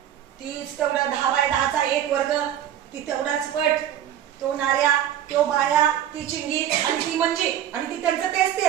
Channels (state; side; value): quieter; left; 10.9 dB